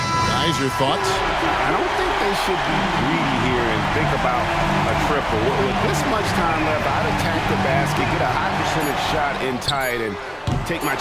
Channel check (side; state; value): both; identical; correlation 1.00